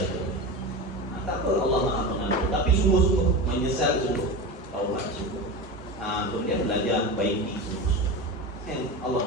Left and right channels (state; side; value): normal; both; correlation 0.25